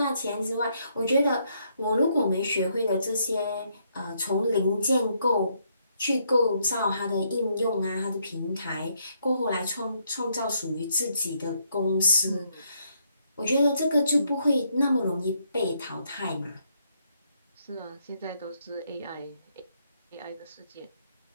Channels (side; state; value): both; inverted; correlation -0.74